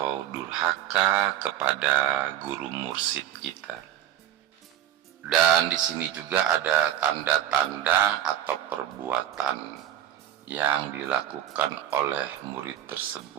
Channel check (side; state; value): left; quieter; 11.6 dB